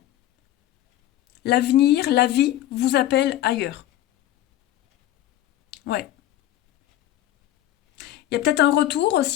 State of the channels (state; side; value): quieter; right; 13.3 dB